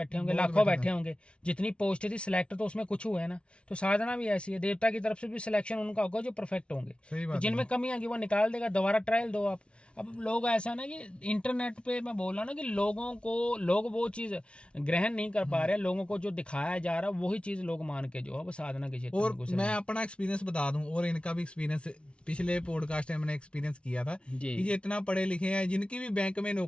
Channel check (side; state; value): right; late; 0.059 ms